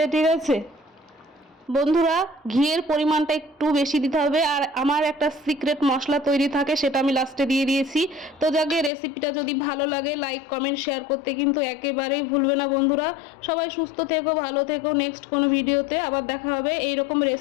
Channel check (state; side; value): drops out; right; at 8.9 s